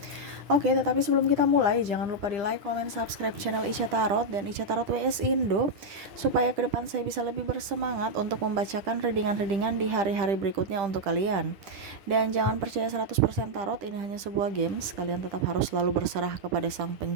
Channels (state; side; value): late; left; 10 ms